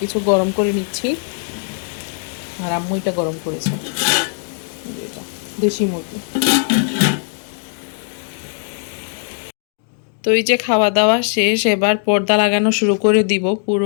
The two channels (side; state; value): right; silent; 64 dB below the other